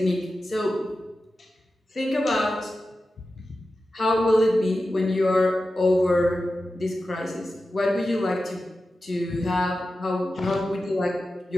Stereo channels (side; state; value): both; normal; correlation 0.93